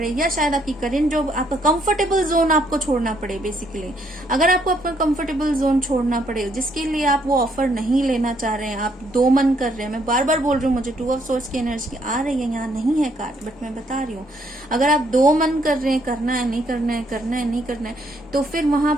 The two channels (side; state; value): both; normal; correlation 0.70